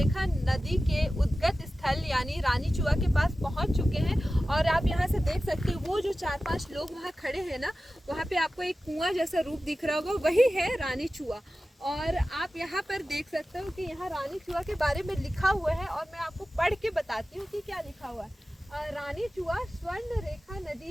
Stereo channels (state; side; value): normal; both; correlation 0.95